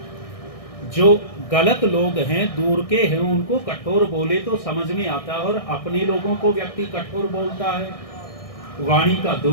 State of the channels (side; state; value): right; late; 1.6 ms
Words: जो गलत लोग हैं, दूर के हैं, उनको कठोर बोले तो समझ में आता, और अपने लोगों को व्यक्ति कठोर बोलता है, वाणी का